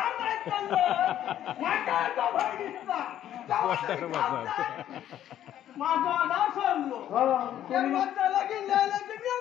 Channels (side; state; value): right; quieter; 11.4 dB